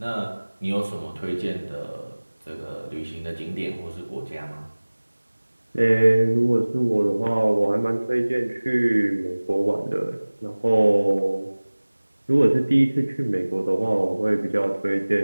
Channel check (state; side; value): inverted; both; correlation -1.00